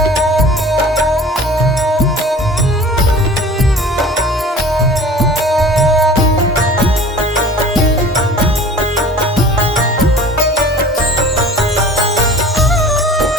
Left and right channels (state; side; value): normal; both; correlation 0.43